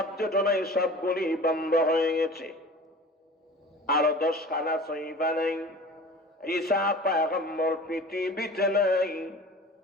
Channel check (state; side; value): normal; both; correlation 0.40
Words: নাই, সবগুলি বন্ধ হয়ে গেছে। আরো 10 খানা সহিফা নাই। ঈসা পয়গম্বর পৃথিবীতে নাই।